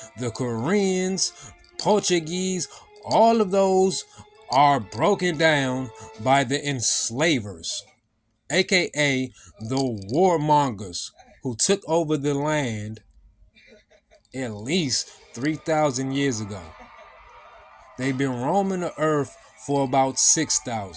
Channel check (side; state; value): both; identical; correlation 1.00